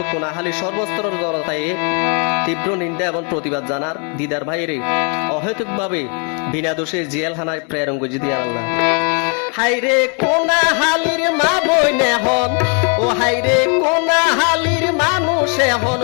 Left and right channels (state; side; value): quieter; right; 38.3 dB